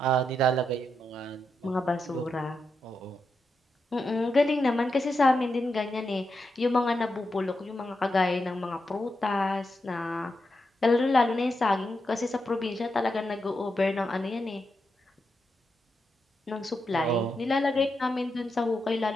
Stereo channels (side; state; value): both; normal; correlation 0.85